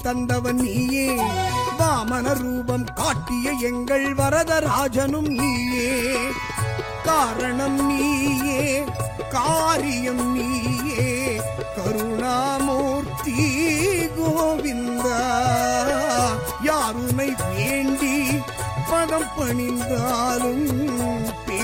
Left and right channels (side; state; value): both; identical; correlation 1.00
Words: தந்தவன் நீயே. வாமன ரூபம் காட்டிய எங்கள் வரதராஜனும் நீயே. காரணம் நீயே, காரியம் நீயே, கருணாமூர்த்தி கோவிந்தா. யாருனை வேண்டி பதம் பணிந்தாலும்